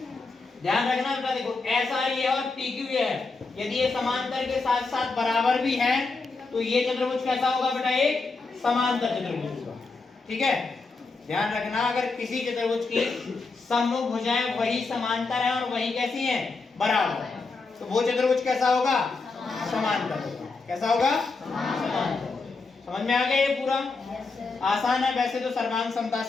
ध्यान रखना बेटा, देखो SR ये और PQ ये है। यदि ये समांतर के साथ साथ बराबर भी है तो ये चतुर्भुज कैसा होगा बेटा? एक समांतर चतुर्भुज होगा। ठीक है, ध्यान रखना, अगर किसी चतुर्भुज की सम्मुख भुजाएं वही समांतर है और वही कैसी हैं? बराबर, तो वो चतुर्भुज कैसा होगा? समांतर होगा। कैसा होगा? समांतर। समझ में आ गया ये पूरा? आसान है, वैसे तो सर्वांग समता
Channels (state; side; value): quieter; right; 4.0 dB